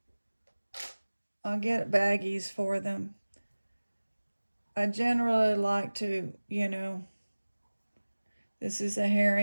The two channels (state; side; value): inverted; both; correlation -1.00